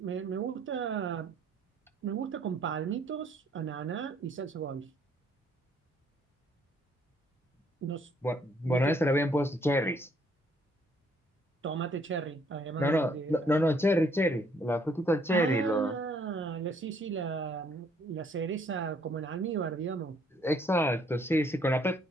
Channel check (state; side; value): normal; both; correlation 0.66